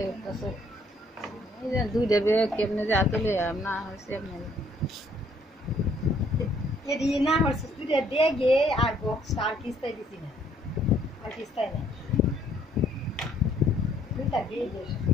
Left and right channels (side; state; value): both; normal; correlation 0.65